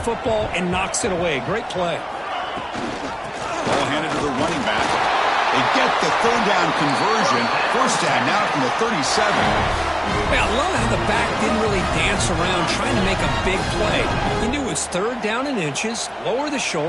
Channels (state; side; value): identical; both; correlation 1.00